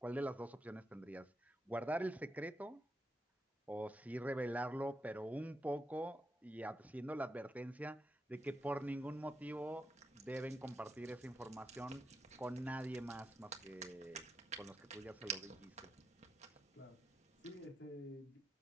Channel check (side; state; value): both; normal; correlation 0.85